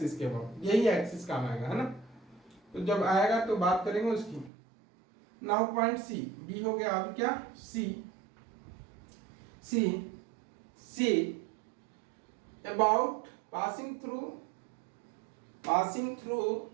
के अबाउट, यही एक्सिस काम आएगा, है ना। तो जब आएगा तो बात करेंगे उसकी। नाउ पॉइंट सी, बी हो गया, अब क्या C about passing through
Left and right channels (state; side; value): drops out; left; at 4.5 s